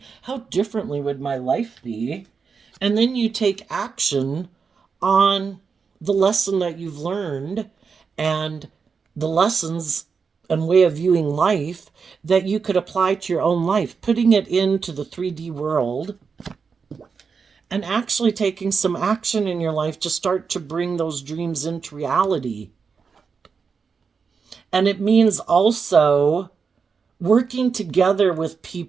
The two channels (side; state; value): left; quieter; 5.5 dB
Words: How differently would my life be? And then you take action on the lesson that you've learned and the lessons and way of viewing life that you could apply to your own life, putting it into the 3D world and actually taking some action in your life to start to bring those dreams into reality. And it means also working together with